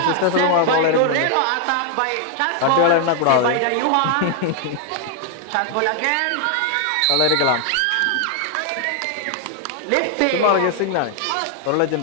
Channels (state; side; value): different; both; correlation 0.00